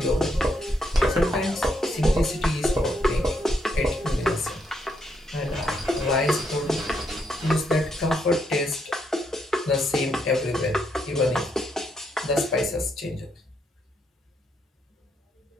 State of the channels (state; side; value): normal; both; correlation 0.77